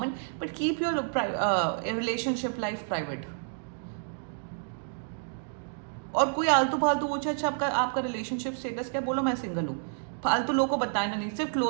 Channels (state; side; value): silent; left; digital silence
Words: but keep your relationship life private. और कोई आलतू फालतू पूछे अच्छा आपका आपका रिलेशनशिप स्टेटस क्या, बोलो मैं सिंगल हूँ। फालतू लोगों को बताना नहीं, सिर्फ